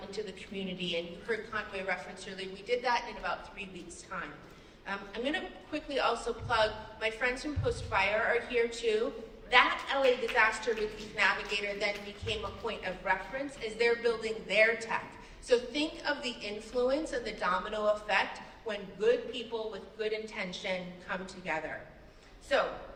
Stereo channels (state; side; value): identical; both; correlation 1.00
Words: into the community? And you heard Conway reference earlier, we did that in about 3 weeks' time. I'm gonna quickly also plug, my friends from Post Fire are here too. That LA Disaster Relief Navigator then became a point of reference as they're building their tech. So think of the influence and the domino effect when good people with good intention come together. So